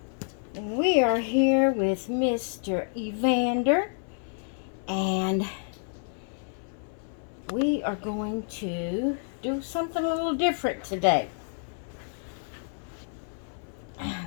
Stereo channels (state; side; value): silent; right; 57 dB below the other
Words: And we are here with Mr. Evander, and we are going to do something a little different today.